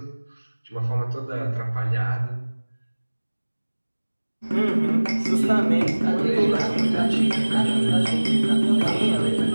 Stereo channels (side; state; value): both; inverted; correlation -1.00